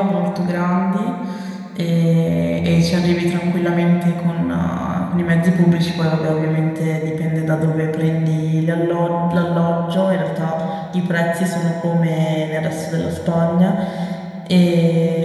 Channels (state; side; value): identical; both; correlation 1.00